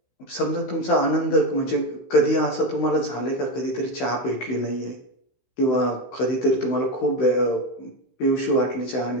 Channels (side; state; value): right; late; 16 ms